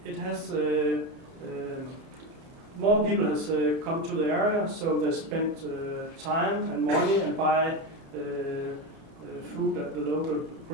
it has more people has come to the area, so they spent time and money and buy food at the local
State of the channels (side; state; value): left; late; 30 ms